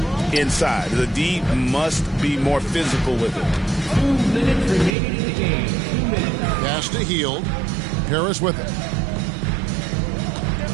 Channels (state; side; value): drops out; left; at 5.0 s